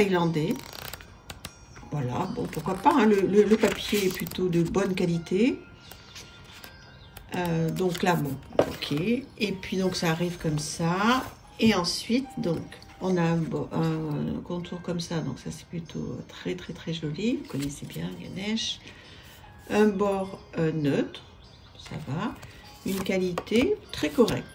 Voilà. Bon, pourquoi pas. Hein, le papier est plutôt de bonne qualité. Donc là, bon, ok. Et puis, donc, ça arrive comme ça. Et ensuite, donc, on a un contour comme ça. Donc, ça, c'est plutôt très, très, très joli. Vous connaissez bien Ganesh. Un bord neutre, ça va, une qualité très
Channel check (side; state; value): both; identical; correlation 1.00